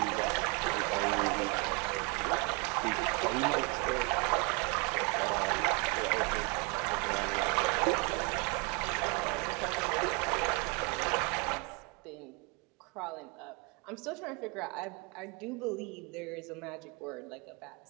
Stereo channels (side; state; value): left; quieter; 31.3 dB